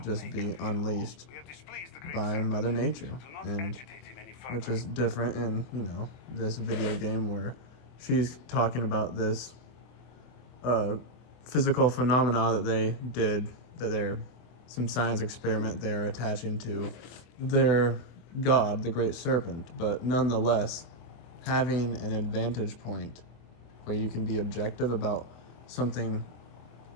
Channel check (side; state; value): right; late; 24 ms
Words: just be unleashed by Mother Nature, and which is different in, this video game where she's talking about this physical phenomena that they did, that they're some science experiment they're attaching to their god, the Great Serpent. But nonetheless, having an advantage point where you can be objective about something